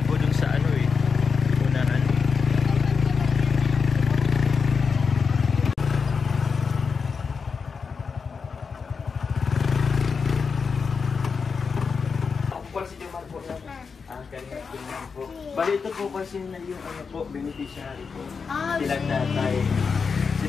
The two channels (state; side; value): quieter; right; 5.5 dB